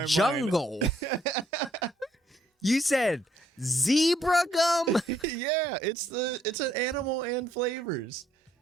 I said jungle. You said zebra gum? mind. Yeah, it's an animal and flavors.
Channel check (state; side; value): normal; both; correlation 0.69